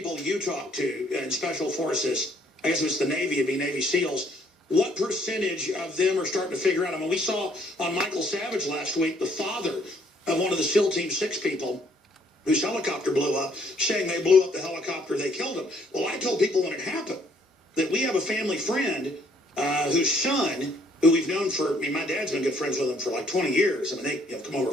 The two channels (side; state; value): both; normal; correlation 0.65